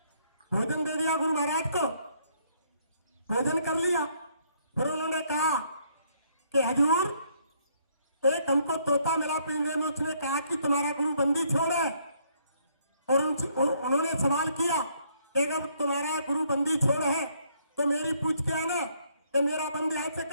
भोजन दे दिया गुरु महाराज को, भोजन कर लिया। फिर उन्होंने कहा कि हजूर एक हमको तोता मिला पिंजरे में, उसने कहा कि तुम्हारा गुरु बंदी छोड़े। और उन्होंने सवाल किया कि अगर तुम्हारा गुरु बंदी छोड़ है तो मेरी पूछ के आना कि मेरा बंदी हाथ से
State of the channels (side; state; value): both; inverted; correlation -0.69